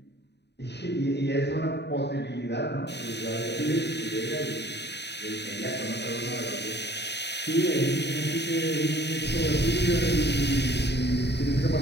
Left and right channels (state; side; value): late; right; 0.50 ms